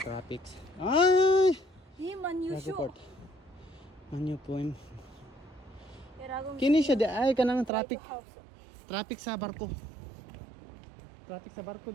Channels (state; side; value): drops out; left; at 7.7 s